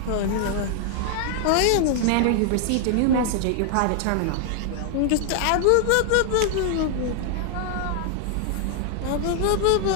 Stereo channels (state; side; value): different; both; correlation 0.00